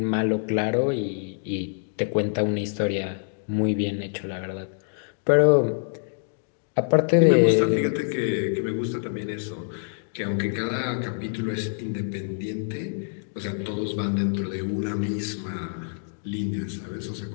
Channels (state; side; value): silent; right; digital silence